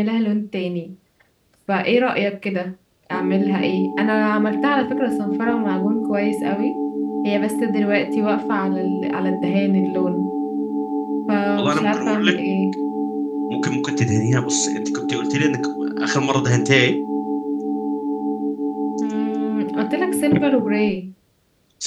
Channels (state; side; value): identical; both; correlation 1.00